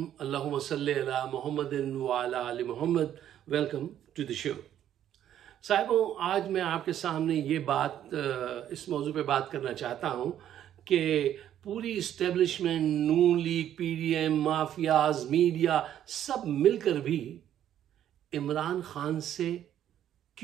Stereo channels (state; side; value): quieter; left; 10.9 dB